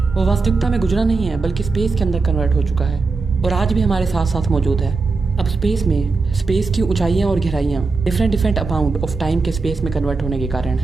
वो वास्तविकता में गुजरा नहीं है, बल्कि स्पेस के अंदर कन्वर्ट हो चुका है, और आज भी हमारे साथ साथ मौजूद है। अब स्पेस की ऊंचाइयां और गहराइयां डिफरेंट अमाउंट ऑफ टाइम के स्पेस में कन्वर्ट होने के कारण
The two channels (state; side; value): quieter; left; 4.1 dB